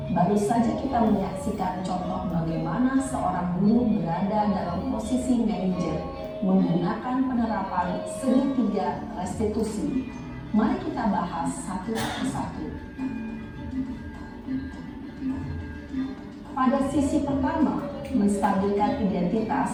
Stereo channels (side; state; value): both; identical; correlation 1.00